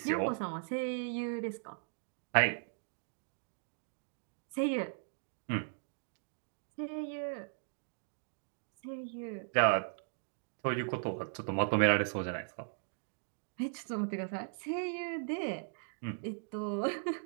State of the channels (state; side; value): silent; left; digital silence